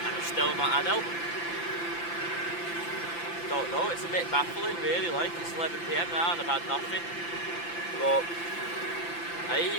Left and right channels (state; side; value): late; right; 5.9 ms